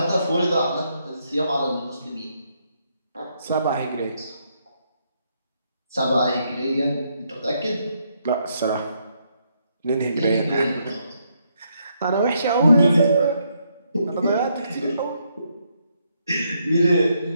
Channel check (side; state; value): both; inverted; correlation -0.76